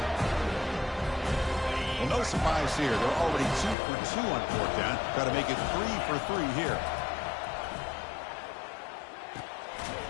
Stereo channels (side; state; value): right; drops out; at 3.8 s